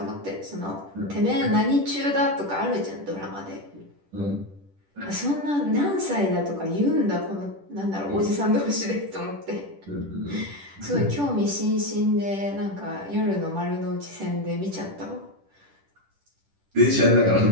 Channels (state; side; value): late; left; 10 ms